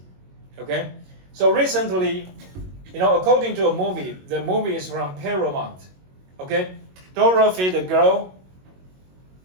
Okay, so recently, according to a movie, the movie is from Paramount. Okay, Dorothy the girl,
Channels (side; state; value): left; late; 22 ms